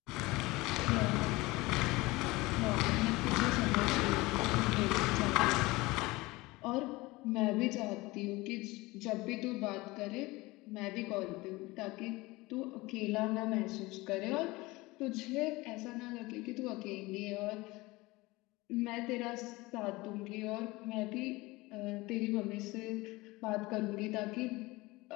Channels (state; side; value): quieter; right; 21.6 dB